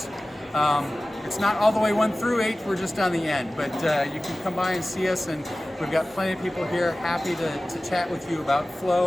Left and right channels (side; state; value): both; normal; correlation 0.97